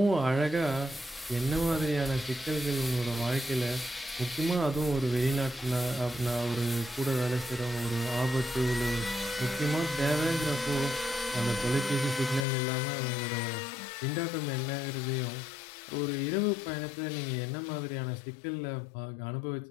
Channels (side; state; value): right; drops out; at 12.5 s